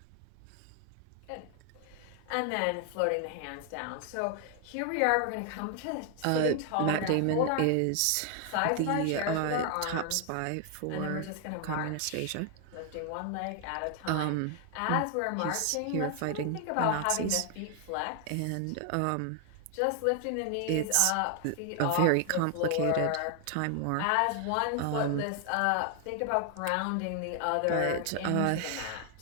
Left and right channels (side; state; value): both; different; correlation 0.00